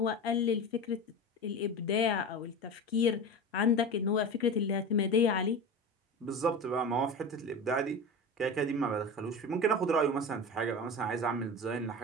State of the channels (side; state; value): both; normal; correlation 0.28